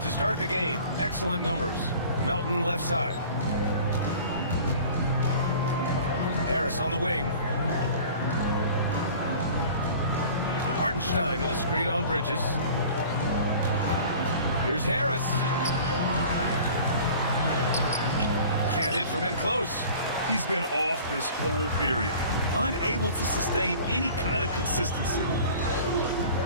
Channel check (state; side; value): inverted; both; correlation -0.44